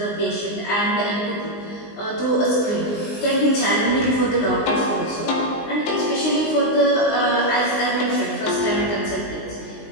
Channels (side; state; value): right; late; 19 ms